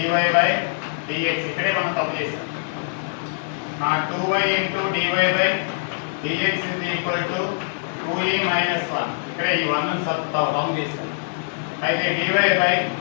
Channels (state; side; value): silent; right; digital silence